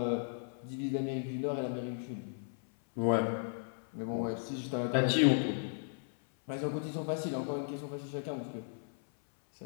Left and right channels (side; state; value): right; silent; 54 dB below the other